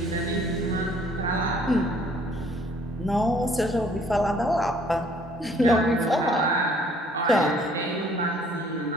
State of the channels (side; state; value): both; normal; correlation 0.60